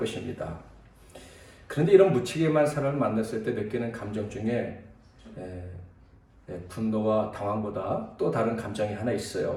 그런데 이런 무책임한 사람을 만났을 때 느끼는 감정 중에 분노와 당황보다 또 다른 감정이 하나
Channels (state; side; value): identical; both; correlation 1.00